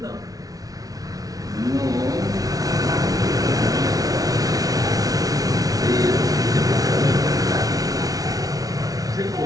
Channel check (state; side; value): late; left; 0.18 ms